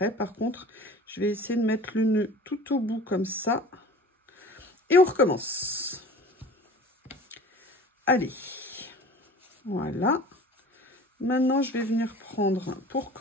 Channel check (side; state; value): both; normal; correlation 0.42